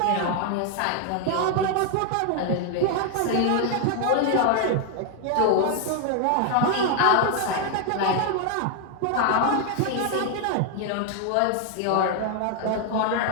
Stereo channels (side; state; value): both; different; correlation 0.00